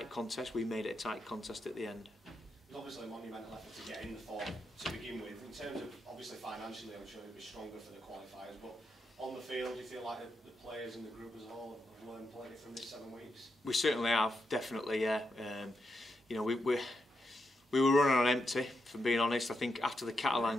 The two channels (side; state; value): both; normal; correlation 0.84